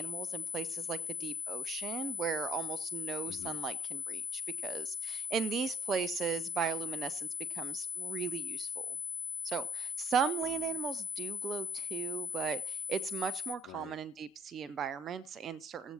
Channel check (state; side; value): normal; both; correlation 0.60